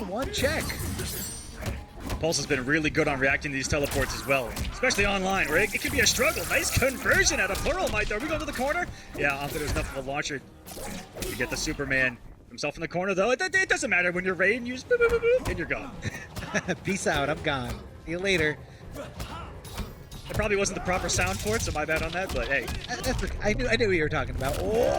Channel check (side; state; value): both; identical; correlation 1.00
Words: 1 check. Pulse has been really good on reacting to these teleports as well, especially online, where it can be a struggle. Nice conversion out of Pluralmite. Are we going to the corner? Yeah, I don't think there's enough of a launcher to get the Superman himself in the corner, though. It doesn't matter when you're Raiden, you just boop, boop, boop, boop, and you're gone. Peace out, I'm gone. See you later. It probably wasn't the proper sound for it, so my bad on that, but hey. I knew what you were talking about.